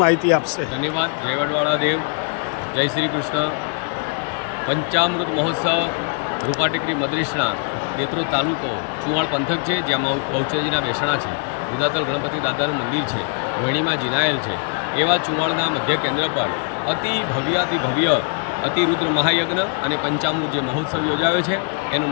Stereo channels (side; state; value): right; quieter; 39.9 dB